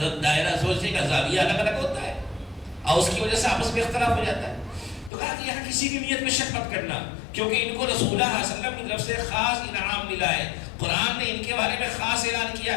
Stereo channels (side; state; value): right; drops out; at 5.1 s